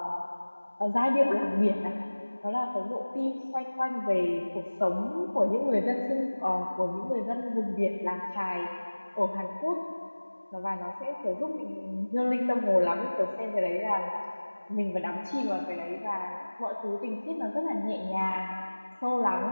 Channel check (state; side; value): inverted; both; correlation -1.00